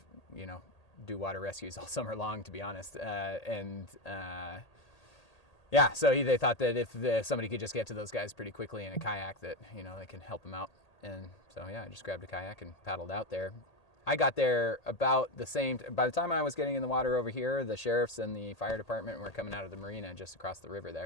you know, do water rescues all summer long, to be honest, yeah, so they thought that if somebody could just get to those guys pretty quickly in a kayak, that, you know, they can help them out. And so, yeah, I just grabbed a kayak and paddled out there. I got there about the same, by the time I was getting in the water over here, the sheriffs and the fire department were coming out of the marina just across the river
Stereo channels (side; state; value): right; late; 1.8 ms